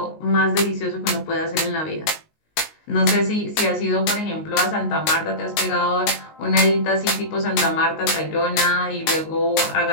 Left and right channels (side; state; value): right; late; 19 ms